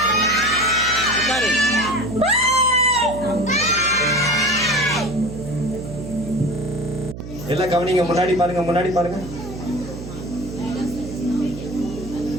எல்லாம் கவனிங்க. முன்னாடி பாருங்க, முன்னாடி பாருங்க.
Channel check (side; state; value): right; noise; hum, 11 dB below the sound